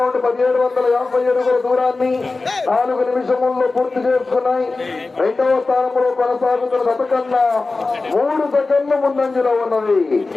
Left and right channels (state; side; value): quieter; right; 3.6 dB